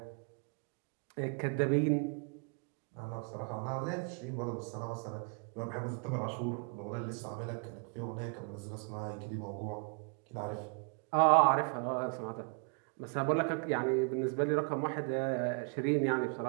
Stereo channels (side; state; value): left; quieter; 37.5 dB